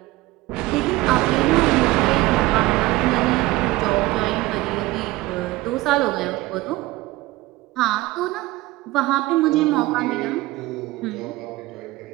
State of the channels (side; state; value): left; quieter; 18.9 dB